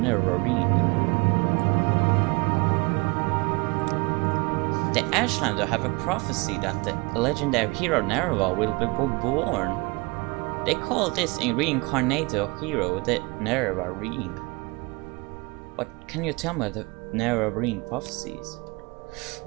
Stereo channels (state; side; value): quieter; left; 27.7 dB